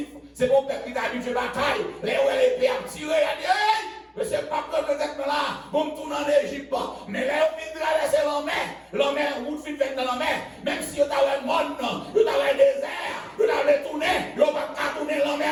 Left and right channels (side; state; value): both; identical; correlation 1.00